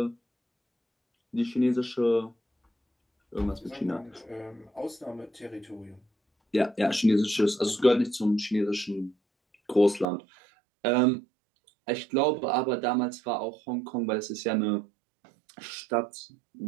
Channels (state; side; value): drops out; left; at 10.1 s